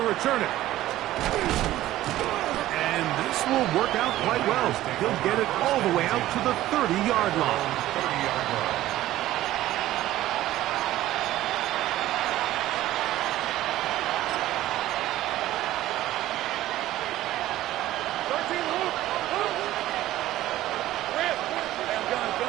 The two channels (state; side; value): quieter; left; 14.8 dB